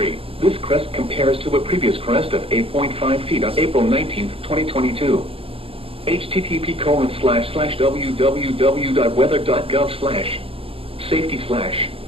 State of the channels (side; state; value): left; late; 0.27 ms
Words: this crest compares to a previous crest of 8.5 feet on April 19, 2022.